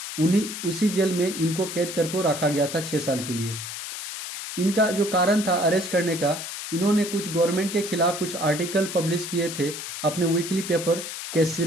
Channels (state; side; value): noise; left; hiss, 7 dB below the sound